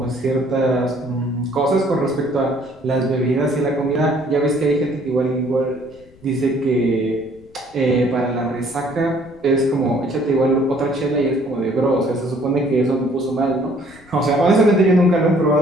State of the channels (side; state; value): left; noise; rumble, 27 dB below the sound